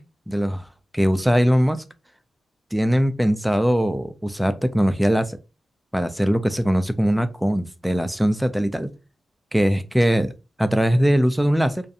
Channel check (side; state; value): both; normal; correlation 0.98